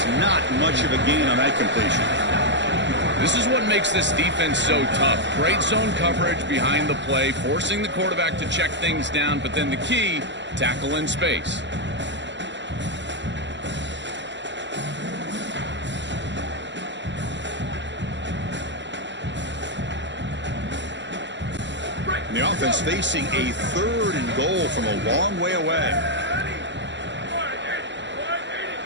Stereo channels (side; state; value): left; late; 0.52 ms